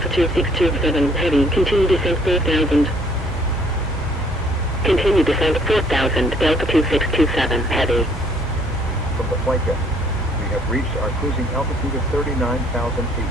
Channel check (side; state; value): both; normal; correlation 0.61